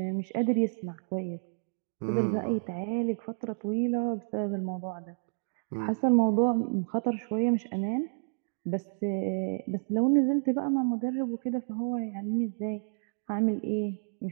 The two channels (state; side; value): silent; left; digital silence